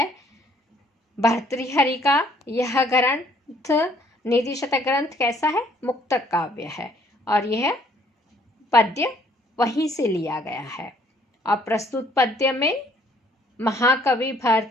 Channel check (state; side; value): normal; both; correlation 0.62